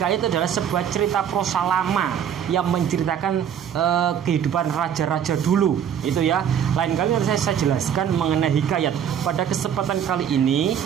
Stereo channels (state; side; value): quieter; left; 8.7 dB